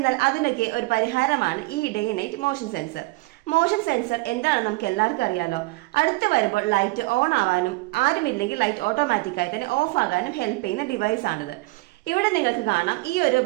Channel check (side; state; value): left; quieter; 23.9 dB